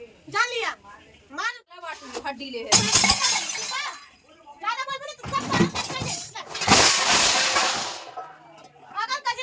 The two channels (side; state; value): both; identical; correlation 1.00